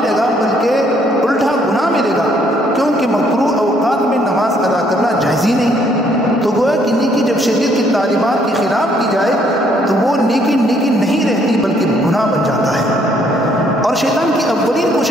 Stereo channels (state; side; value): normal; both; correlation 0.67